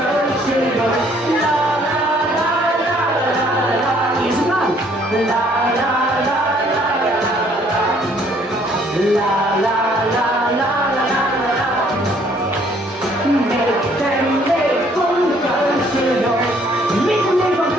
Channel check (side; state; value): both; normal; correlation 0.62